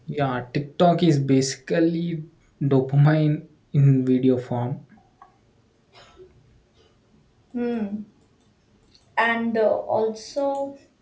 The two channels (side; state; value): both; identical; correlation 1.00